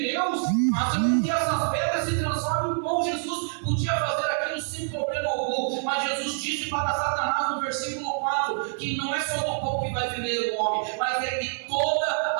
Deus, mas que essas pedras se transformem em pão. Jesus podia fazer aquilo sem problema algum, mas Jesus disse para Satanás no versículo 4 que não é só do pão que vai viver o homem, mas é de toda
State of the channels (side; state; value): left; silent; digital silence